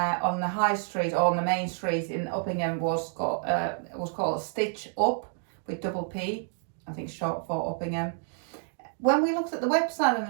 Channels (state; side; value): silent; left; 59 dB below the other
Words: the high street or on the main street in Uppingham was called Stitch Up with double P, I think short for Uppingham. When we looked at the website and